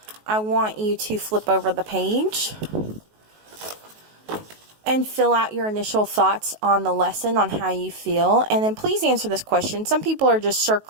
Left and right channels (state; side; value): late; left; 19 ms